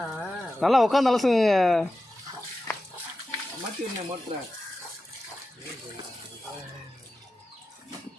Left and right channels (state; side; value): normal; both; correlation 0.93